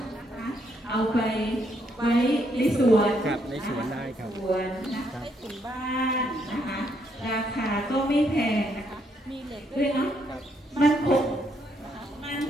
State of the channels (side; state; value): both; normal; correlation 0.74